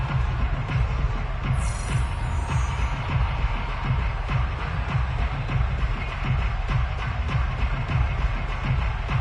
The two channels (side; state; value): both; identical; correlation 1.00